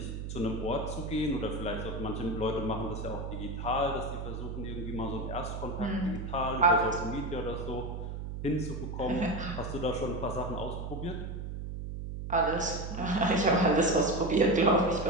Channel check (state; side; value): noise; right; hum, 6 dB below the sound